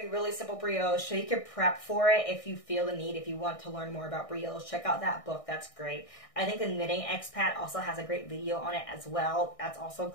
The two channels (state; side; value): late; right; 1.6 ms